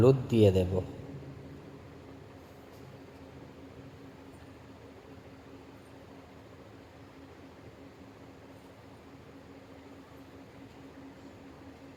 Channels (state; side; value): identical; both; correlation 1.00